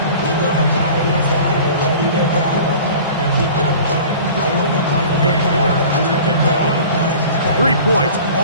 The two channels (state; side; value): inverted; both; correlation -0.42